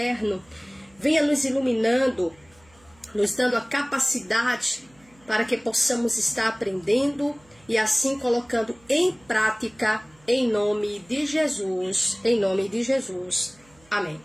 venha nos iluminando, nos dando a capacidade para que possamos estar aprendendo e assim colocando em prática, em nome de Jesus, em nome de Jesus. Amém.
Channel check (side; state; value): right; noise; hum, 30 dB below the sound